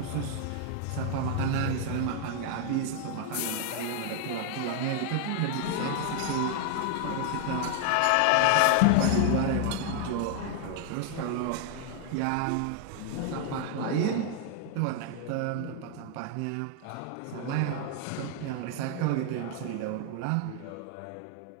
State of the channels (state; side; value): different; both; correlation 0.00